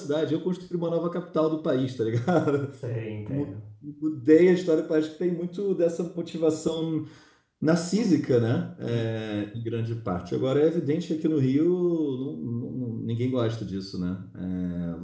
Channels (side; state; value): both; identical; correlation 1.00